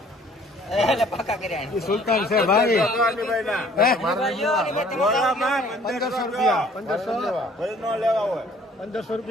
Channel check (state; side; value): normal; both; correlation 0.57